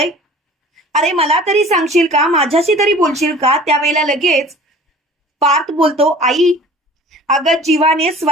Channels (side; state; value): both; normal; correlation 0.45